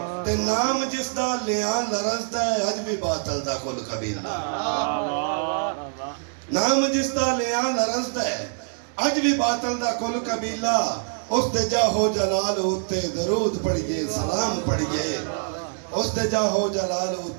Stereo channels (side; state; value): left; silent; digital silence